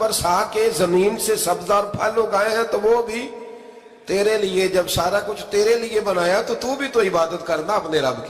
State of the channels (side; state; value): both; identical; correlation 1.00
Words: کے زمین سے سبز اور پھل اگائے ہیں تو وہ بھی تیرے لیے۔ جب سارا کچھ تیرے لیے بنایا تو بھی تو عبادت کرنا اپنے رب